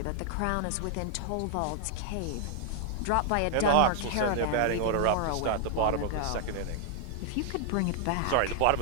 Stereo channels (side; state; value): both; different; correlation 0.00